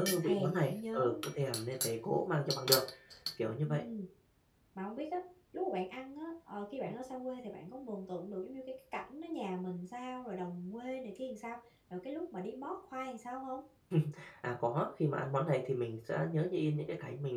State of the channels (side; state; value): both; identical; correlation 1.00